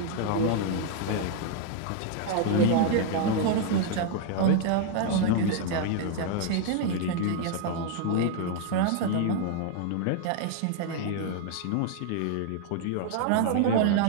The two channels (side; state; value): both; different; correlation 0.00